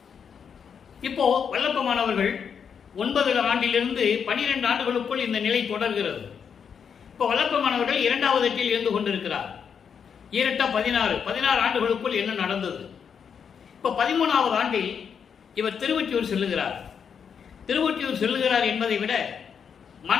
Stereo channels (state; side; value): quieter; right; 7.0 dB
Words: இப்போ வல்லப்பமானவர்கள் 9 ஆண்டிலிருந்து 12 ஆண்டுகளுக்குள் இந்த நிலை தொடர்கிறது. இப்போ வல்லப்பமானவர்கள் 2வது எட்டில் இருந்து கொண்டிருக்கிறார். 16 ஆண்டுகளுக்குள் என்ன நடந்தது? இப்போ 13வது ஆண்டில் இவர் திருவொற்றியூர் செல்லுகிறார். திருவொற்றியூர் செல்லுகிறார் என்பதை விட